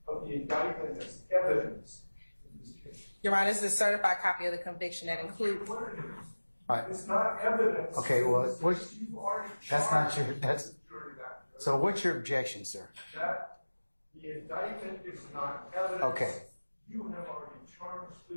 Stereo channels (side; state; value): both; inverted; correlation -1.00